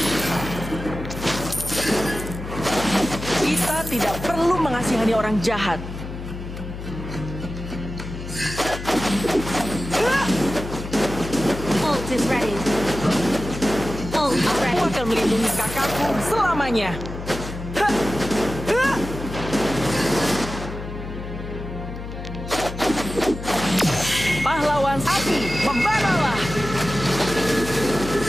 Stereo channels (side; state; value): left; noise; hum, 9 dB below the sound